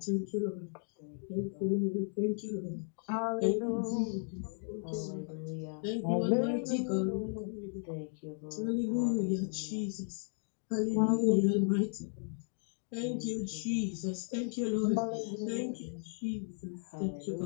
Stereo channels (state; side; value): silent; right; 54 dB below the other